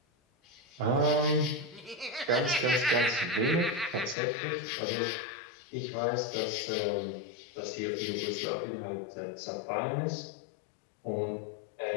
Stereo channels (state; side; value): drops out; right; at 4.2 s